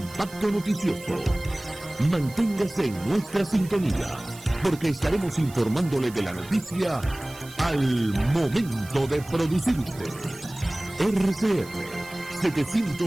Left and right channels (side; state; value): right; noise; hiss, 19 dB below the sound